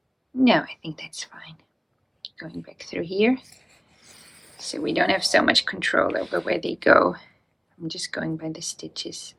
No, I think that's fine. Going back through here, so we don't have so much control over where they go. I'm just going by the stitches,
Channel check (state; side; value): identical; both; correlation 1.00